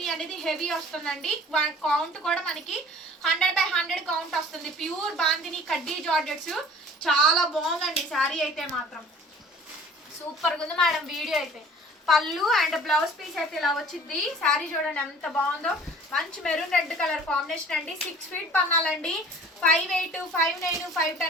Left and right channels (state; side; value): normal; both; correlation 0.48